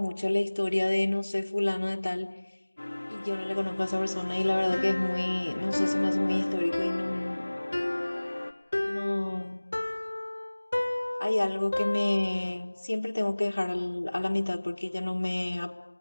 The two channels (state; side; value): inverted; both; correlation -1.00